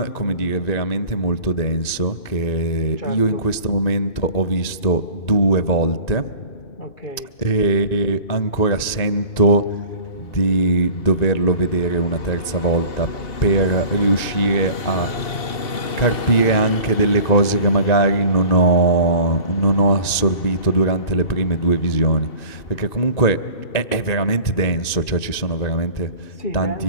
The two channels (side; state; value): right; late; 1.9 ms